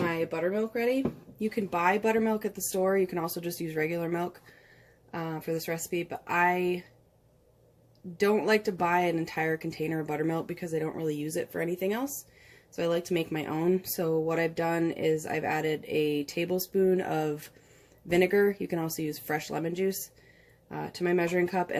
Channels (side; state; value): both; identical; correlation 1.00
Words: buttermilk ready. You can buy buttermilk at the store. You can also just use regular milk for this recipe, but I don't like to buy an entire container of buttermilk because I don't really use it for anything else. So I like to make my own. So what I've done is I've added a tablespoon of vinegar, you can also use fresh lemon juice, to my measuring cup,